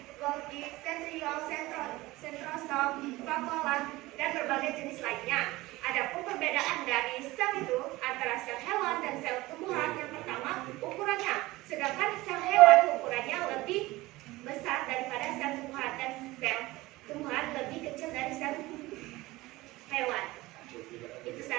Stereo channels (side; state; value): left; quieter; 19.5 dB